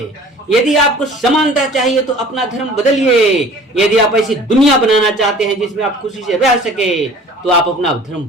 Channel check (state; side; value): normal; both; correlation 0.46